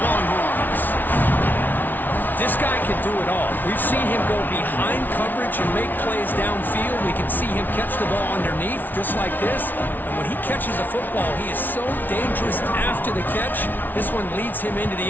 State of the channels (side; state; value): right; late; 0.086 ms